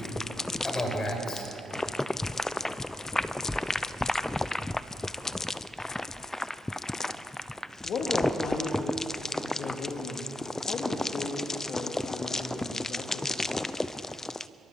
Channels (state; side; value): normal; both; correlation 0.86